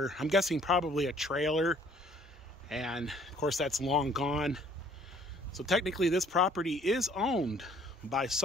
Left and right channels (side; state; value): both; normal; correlation 0.59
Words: I'm guessing probably a trailer. And, of course, that's long gone. So technically, this property is owned by